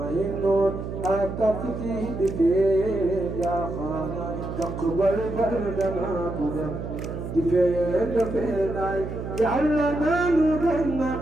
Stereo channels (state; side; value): noise; right; hum, 7 dB below the sound